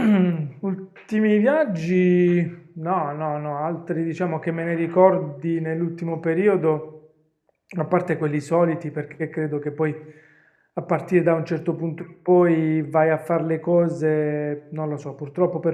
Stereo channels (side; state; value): both; identical; correlation 1.00